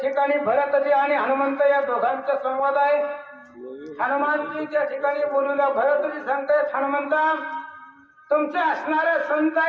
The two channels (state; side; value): identical; both; correlation 1.00